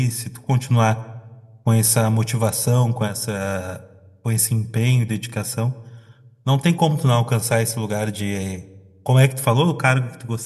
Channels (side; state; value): both; identical; correlation 1.00